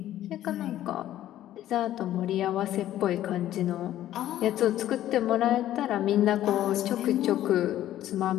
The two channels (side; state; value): right; quieter; 12.9 dB